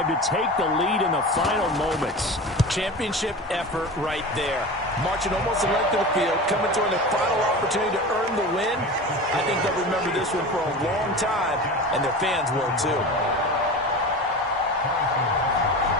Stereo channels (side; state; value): both; normal; correlation 0.31